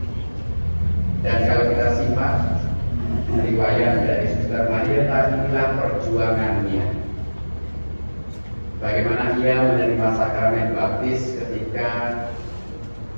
Dan kalau kita simak riwayat dari Suster Marieta, inilah perjuangannya. Bagaimana ia menerima sakramen baptis ketika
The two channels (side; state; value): both; inverted; correlation -1.00